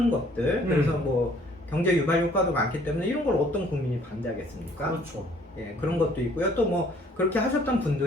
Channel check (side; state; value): both; normal; correlation 0.59